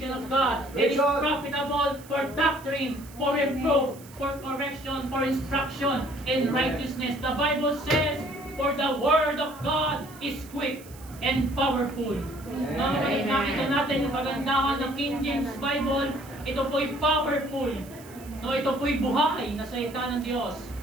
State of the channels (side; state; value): right; noise; hiss, 21 dB below the sound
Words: of God. It is profitable for doctrine, for reproof, for correction, for instruction in righteousness. The Bible says, for the Word of God is quick and powerful. Nakita natin yung kagandahan ng King James Bible. Ito po'y powerful. No, ito po'y buhay na salita ng Diyos.